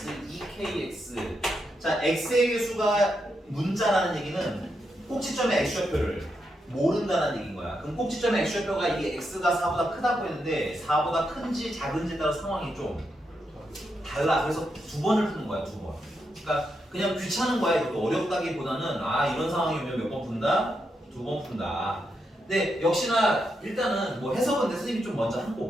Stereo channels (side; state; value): both; normal; correlation 0.83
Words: 2kx. 자, x의 개수가 문자라는 얘기는 꼭지점의 x좌표를 모른다는 얘기인 거야. 그럼 꼭지점의 x좌표가 이게 x가 4보다 크다고 했는데 4보다 큰지 작은지에 따라 상황이 좀 달라. 그래서 두 번을 푸는 거야, 두 번. 그러니까 그냥 귀찮은 거야. 이것도 어렵다기보다는 아 이런 상황이 오면 몇 번 푼다? 두 번 푼다. 근데 역시나 일단은 뭐 해석은 내 선생님이 좀 먼저 한